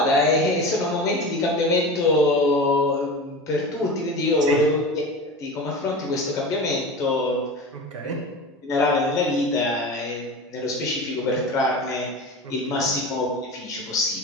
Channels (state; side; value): normal; both; correlation 0.30